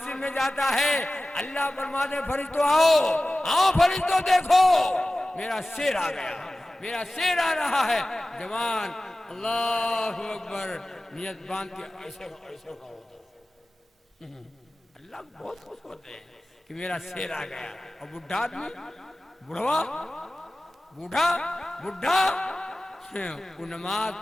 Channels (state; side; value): normal; both; correlation 0.96